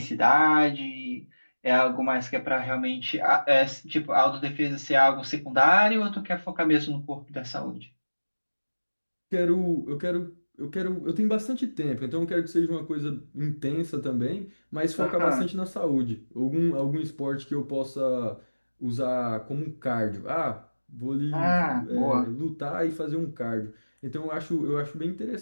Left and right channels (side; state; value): both; inverted; correlation -1.00